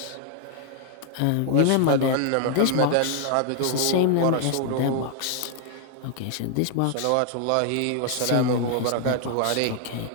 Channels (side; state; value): both; different; correlation 0.00